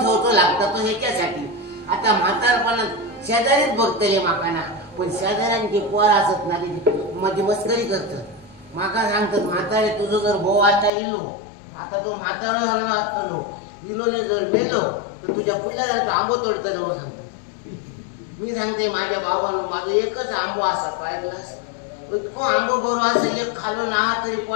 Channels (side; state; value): right; drops out; at 10.9 s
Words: लागतं तो ह्याच्यासाठी. आता म्हातारपणात शेजारीच बघतले माकाना, पण शेजाऱ्यांची पोर असत ना माझी मस्करी करत. माका सांगतात म्हातारे तुझं जर भाऊ आता इलो, आता तो म्हातारा असतलो इलोने जर मेलो तर तुझ्या पुढल्या जर आंबो तोडतलो म्हणून सांगतो. मी सांगते माझ्या बाबांनो माझं एकच आंबो असा पाहिलास, इतको आंबो बरो असा एक खालो ना तरी